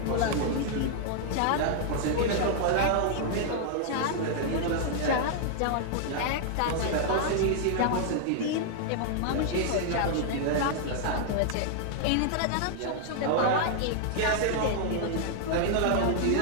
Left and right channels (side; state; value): both; different; correlation -0.01